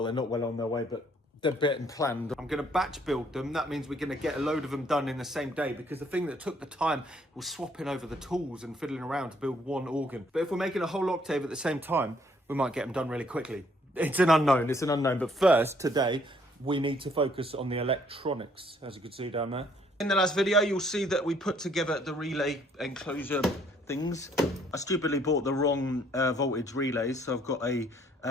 they're not well on their way, but they're getting planned. I'm going to batch build them. That means we're going to get a load of them done in the same day, because the thing that took the time was swapping over the tools and fiddling around to build one organ. But if we're making a whole octave at the same time, we might get them done really quickly. It's an unknown. But first, today, we need to focus on the electronics, as you can see down there. In the last video, you'll see that we put together the relay enclosure things. I stupidly bought the wrong voltage relays, so I've got a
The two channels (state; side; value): normal; both; correlation 0.65